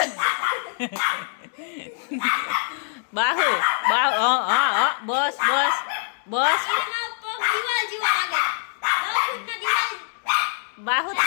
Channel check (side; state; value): right; silent; 58 dB below the other